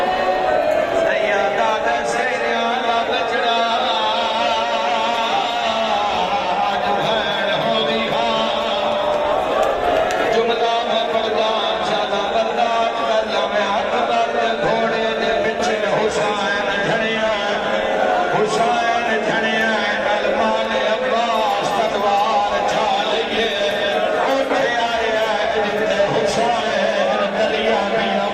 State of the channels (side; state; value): both; identical; correlation 1.00